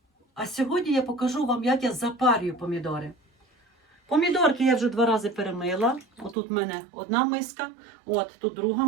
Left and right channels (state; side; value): drops out; left; at 6.4 s